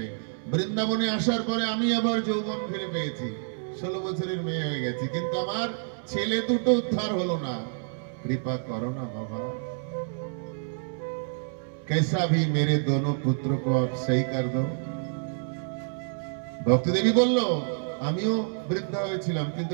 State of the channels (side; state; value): left; silent; 59 dB below the other